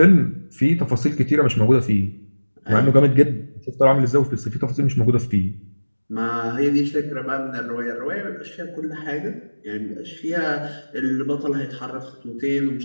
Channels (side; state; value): both; inverted; correlation -1.00